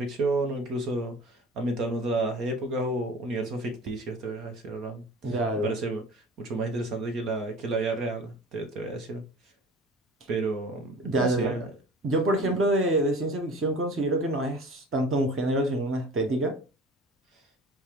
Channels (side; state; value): both; normal; correlation 0.41